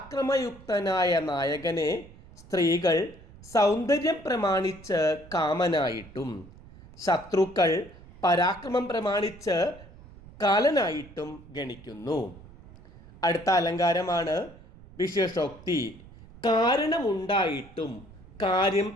നായകനെ സ്ത്രീകൾ സൗന്ദര്യം പ്രമാണിച്ച് കാമനായിട്ടും ശത്രുക്കൾ പരാക്രമം പ്രമാണിച്ച് കാലനായിട്ടും ഗണിക്കുന്നു. അടുത്ത അലങ്കാരമാണ് വിശേഷോക്തി. കാരണമുണ്ടായിട്ടും കാര്യം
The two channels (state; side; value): noise; right; rumble, 20 dB below the sound